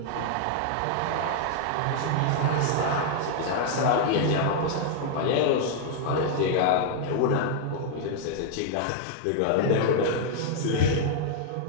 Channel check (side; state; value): both; different; correlation -0.01